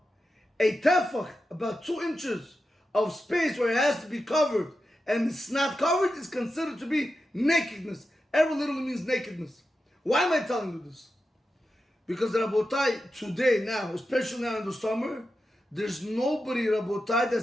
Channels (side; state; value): both; normal; correlation 0.90